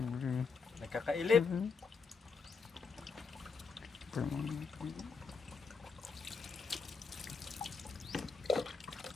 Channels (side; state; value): right; quieter; 4.9 dB